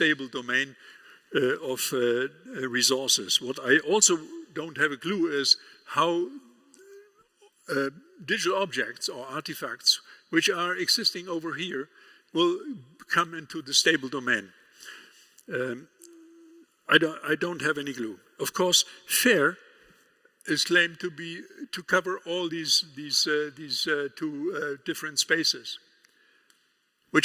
domain of resources. What I also don't have a clue is how digital objects or artifacts which are existing over here will come into the stable domain. I don't have any clue. Of course, FAIR is claimed to cover all these two different spaces,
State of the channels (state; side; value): identical; both; correlation 1.00